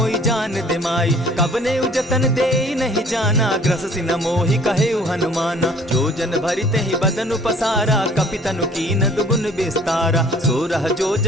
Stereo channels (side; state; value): both; normal; correlation 0.54